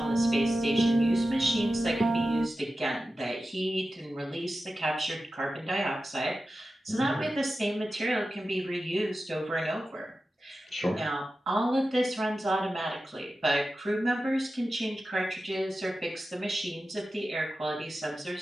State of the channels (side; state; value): both; normal; correlation 0.93